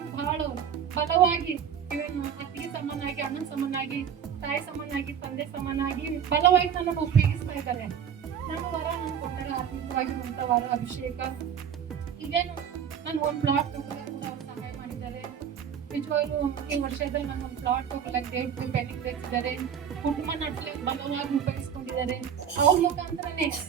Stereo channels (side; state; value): left; quieter; 8.2 dB